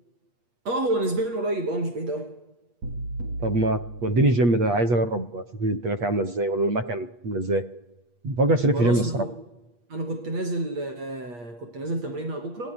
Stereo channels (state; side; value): late; left; 8.4 ms